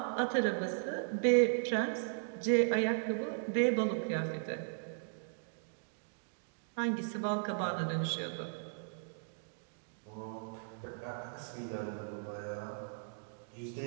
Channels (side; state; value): left; silent; digital silence